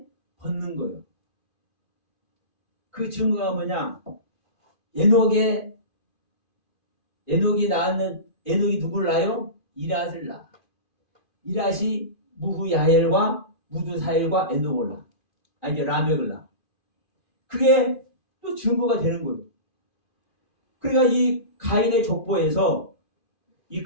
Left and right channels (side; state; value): right; late; 2.4 ms